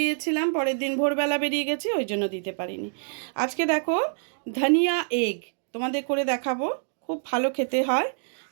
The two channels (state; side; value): silent; left; digital silence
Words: পরের দিন ভোরবেলা বেরিয়ে গেছি, ওই জন্য দিতে পারিনি। আজকে দেখো ধনিয়া এগ তোমাদের করে দেখাবো, খুব ভালো খেতে হয়।